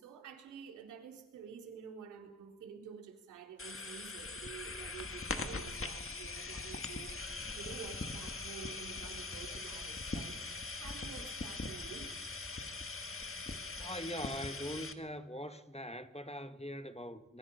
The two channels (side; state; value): both; normal; correlation 0.42